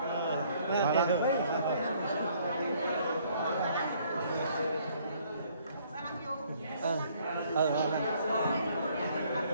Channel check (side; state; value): both; inverted; correlation -0.63